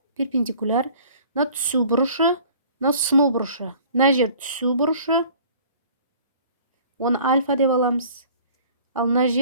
перпендикуляр. Мына түсу бұрышы, мына сыну бұрышы. Мына жер түсу бұрышы. Оны альфа деп аламыз. Ал мына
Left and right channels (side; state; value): both; inverted; correlation -0.50